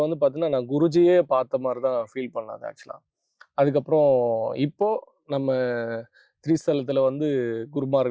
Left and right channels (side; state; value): both; identical; correlation 1.00